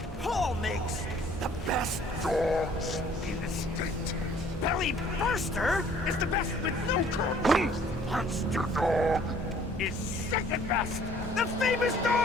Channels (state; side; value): normal; both; correlation 0.56